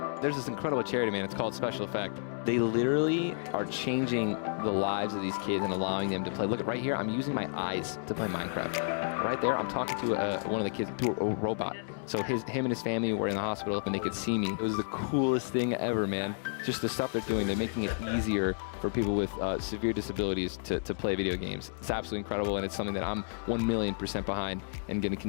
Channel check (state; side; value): silent; right; digital silence